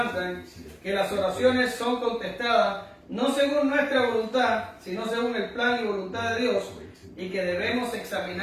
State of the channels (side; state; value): both; identical; correlation 1.00